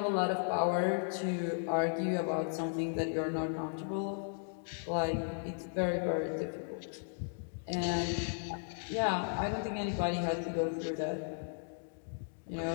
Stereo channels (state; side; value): silent; right; digital silence